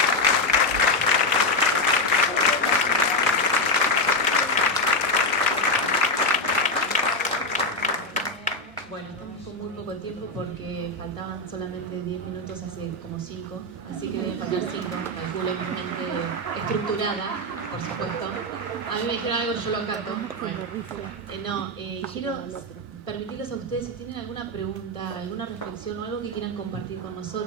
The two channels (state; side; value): normal; both; correlation 0.08